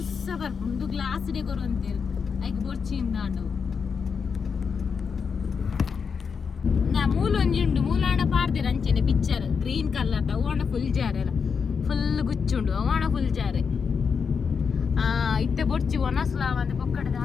ಬರ್ಪು ಒಂದು ಗ್ಲಾಸ್ ಡೆ ಕೊರು ಅಂತೇಳಿ ಐಕ್ ಬೊರ್ಚಿಂದ ಅಂಡು ನಾ ಮೂಲ ಒಂಜುಂಡು ಮೂಲಾಂಡ ಪಾರ್ದಿರ ಅಂಚೆನೆ ಪಿಕ್ಚರ್ ಗ್ರೀನ್ ಕಲರ್ ಅವಣ ಫುಲ್ ಜಾರ್ ಎಲ್ಲ ಫುಲ್ ಗುಚ್ಚುಂಡು ಅವಣ ಫುಲ್ ಜಾರೆ ಇತ್ತೆ ಬೊಡ್ಚಿ ಒಣಸ್ಲಾವ ಅಂತ ಪೊಕ್ಕಡದ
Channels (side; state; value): right; quieter; 6.0 dB